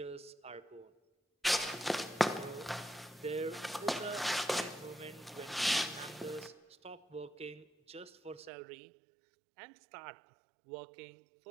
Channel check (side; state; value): left; drops out; at 8.5 s